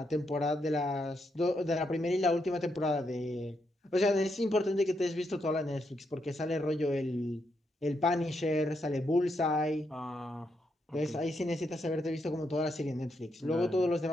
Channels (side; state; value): both; normal; correlation 0.80